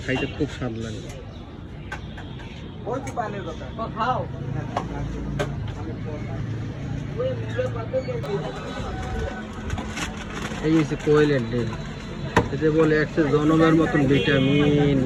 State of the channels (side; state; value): both; identical; correlation 1.00